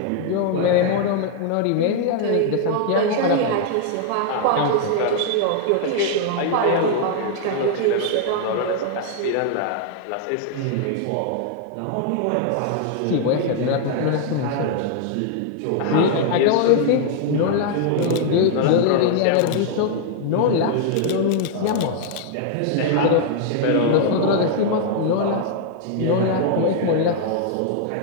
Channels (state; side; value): different; both; correlation 0.00